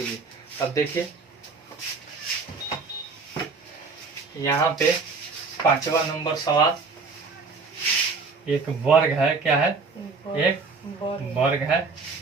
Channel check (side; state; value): left; quieter; 4.3 dB